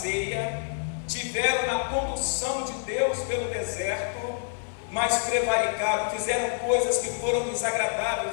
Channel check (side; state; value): right; silent; digital silence